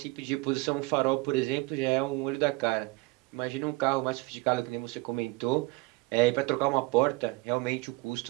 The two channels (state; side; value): quieter; left; 23.6 dB